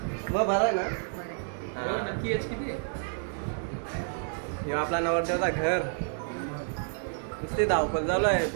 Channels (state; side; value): silent; left; 58 dB below the other